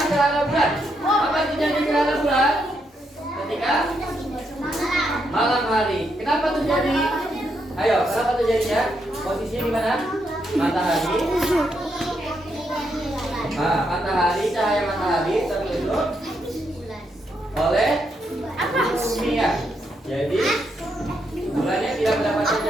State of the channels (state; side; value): normal; both; correlation 0.79